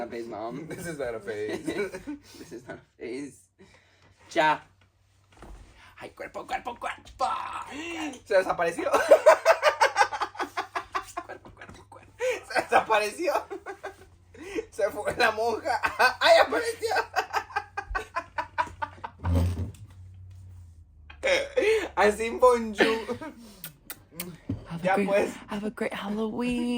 phase, mom. This is not a phase. This is not a phase. Ya. Ay, cuerpo. Se desapareció. Cuerpo. Se desapareció. Se fue la monja. ¡Ay, apareció! Así bonjour. Ya pues. Have a great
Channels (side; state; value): both; identical; correlation 1.00